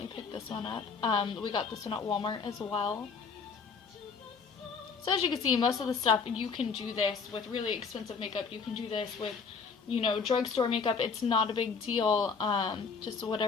picked this one up. We got this one at Walmart as well. So as you can see, most of the stuff, you can do this with really expensive makeup. You can do this with, you know, drugstore makeup. It's not a big deal. Just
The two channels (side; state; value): right; quieter; 5.4 dB